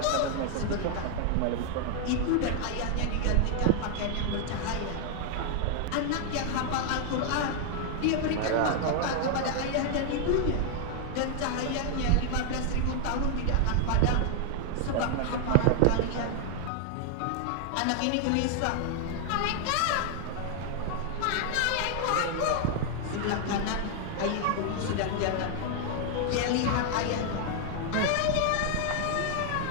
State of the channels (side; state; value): both; different; correlation 0.00